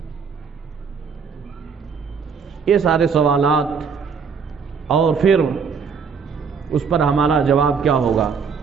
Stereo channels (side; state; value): left; quieter; 6.0 dB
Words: یہ سارے سوالات، اور پھر اس پر ہمارا جواب کیا ہوگا۔